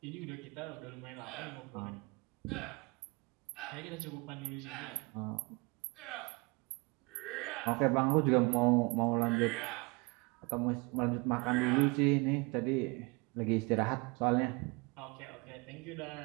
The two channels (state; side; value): quieter; left; 28.0 dB